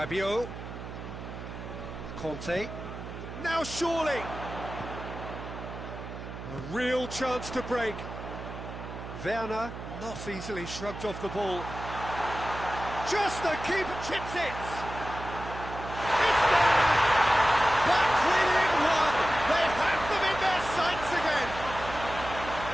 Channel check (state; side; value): noise; right; hum, 10 dB below the sound